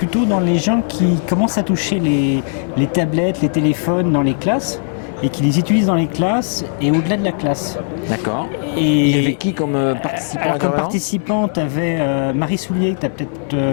dans les gens qui commencent à toucher les tablettes, les téléphones dans les classes et qui les utilisent dans les classes et au-delà de la classe. D'accord. Et il y avait qui comme participant? Alors, comme participant, tu avais Marie Soulier, que tu as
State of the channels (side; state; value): right; silent; 67 dB below the other